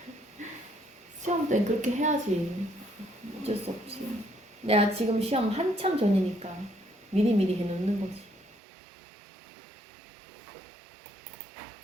시험 때는 그렇게 해야지. 어쩔 수 없지. 내가 지금 시험 한참 전이니까 미리미리 해놓는 거지.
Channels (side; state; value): left; drops out; at 8.6 s